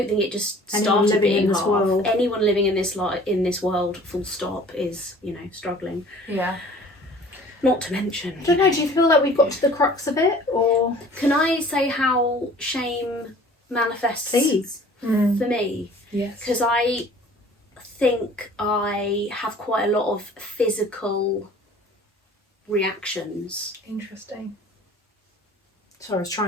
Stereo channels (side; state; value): both; normal; correlation 0.49